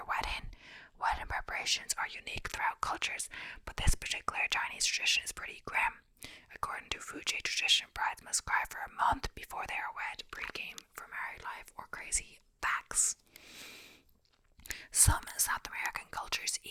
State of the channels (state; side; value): identical; both; correlation 1.00